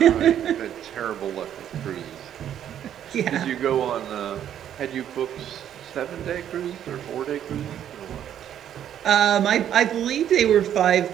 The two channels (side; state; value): left; quieter; 10.2 dB